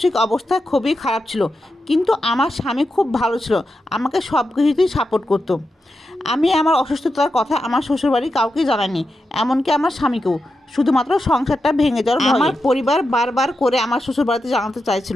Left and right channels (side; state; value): both; normal; correlation 0.88